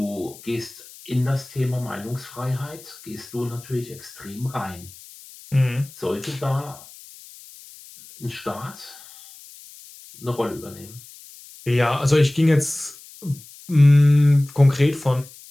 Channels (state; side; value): noise; left; hiss, 20 dB below the sound